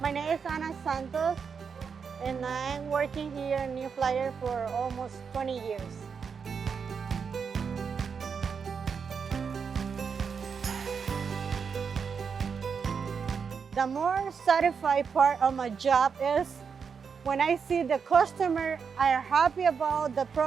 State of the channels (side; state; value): left; quieter; 6.1 dB